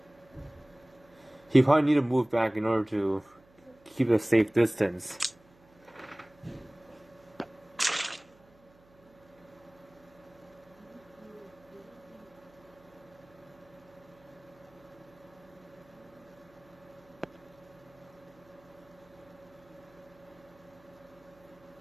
He probably need to move back in order to keep a safe distance.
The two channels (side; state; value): right; noise; hum, 28 dB below the sound